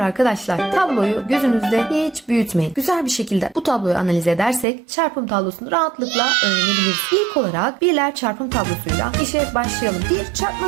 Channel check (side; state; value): left; drops out; at 4.7 s